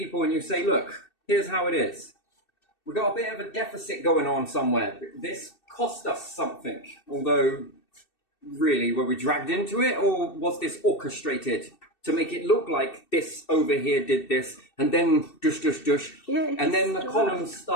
and you say, look, here's how it is. We've got a bit of a deficit going on somewhere. This cost us something. Although, really, were we dragged into it? Or was this orchestrated to make it look like this over here did this? And then dush, dush, dush. Yeah, and then the columns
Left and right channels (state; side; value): late; right; 2.7 ms